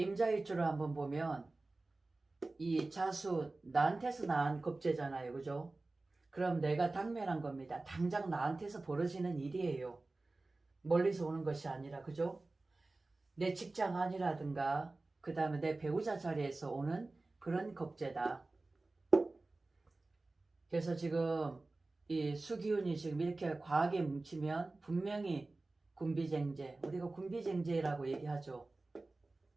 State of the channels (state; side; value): quieter; left; 3.2 dB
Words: 한번 보면 이 자수, 나한테서 낳은 겁재잖아요, 그죠? 그럼 내가 당면한 겁니다. 당장 나한테서 벌어지는 일이에요. 멀리서 오는 것이 아니라, 그죠? 내 직장 안이라든가 그 다음에 내 배우자 자리에서 오는 그런 겁재다. 그래서 지금 이 수기운이 지금 이렇게 과하게 뭉치면 분명히 군비쟁제, 우리가 군비쟁제라고 얘기하죠.